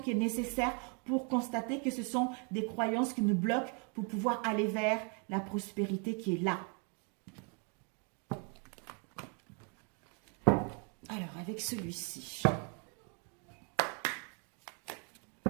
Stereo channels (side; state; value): left; quieter; 37.2 dB